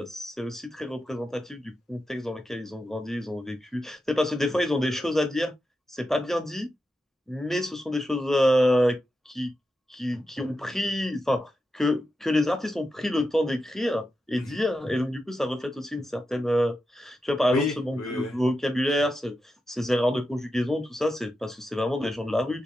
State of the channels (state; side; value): normal; both; correlation 0.89